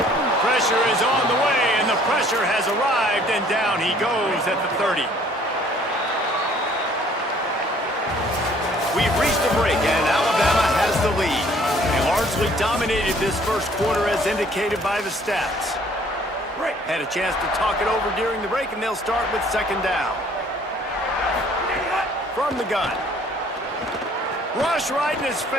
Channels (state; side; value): normal; both; correlation 0.58